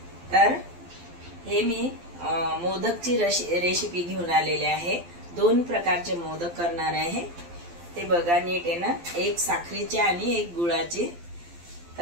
तर हे मी मोदकची रेसिपी घेऊन आलेली आहे। दोन प्रकारचे मोदक करणार आहे, ते बघा नीट आहे ना। एक साखरेचे आणि एक गुळाचे।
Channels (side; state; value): left; late; 12 ms